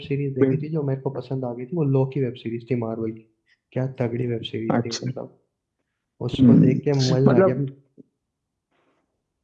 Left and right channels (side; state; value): both; identical; correlation 1.00